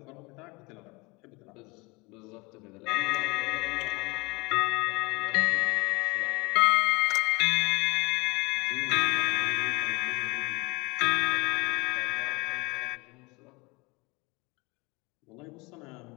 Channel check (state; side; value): quieter; right; 25.8 dB